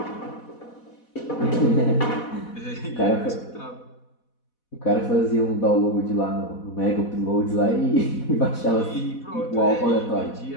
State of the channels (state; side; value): late; right; 4.1 ms